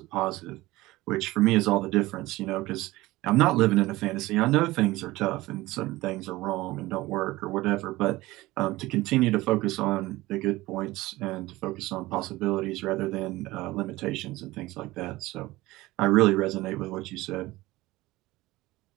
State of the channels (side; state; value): left; quieter; 18.9 dB